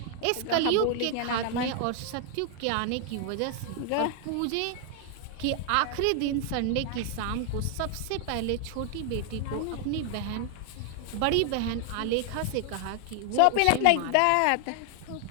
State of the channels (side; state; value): both; different; correlation 0.00